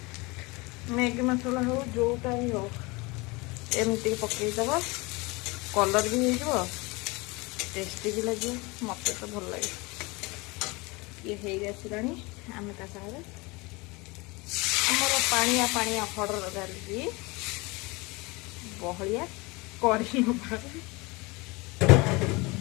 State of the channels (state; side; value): quieter; right; 25.3 dB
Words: मैगी मसला हो जोटा ही हो एमती पकईदब कलर भी हो टेस्टी भी लगे मत तो भल लगे ये हो गला आम सागर आमर पानिया पानिया हरर डाली बहलिया कर